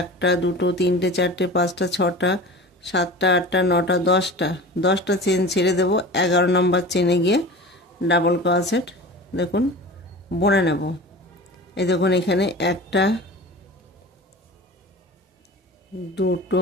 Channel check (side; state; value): both; normal; correlation 0.35